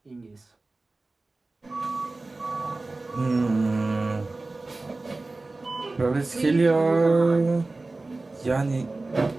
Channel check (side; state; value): left; quieter; 3.2 dB